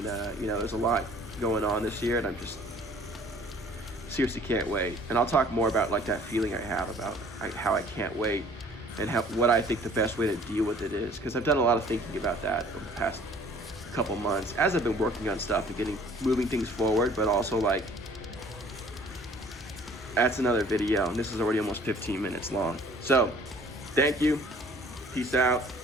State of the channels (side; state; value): both; normal; correlation 0.53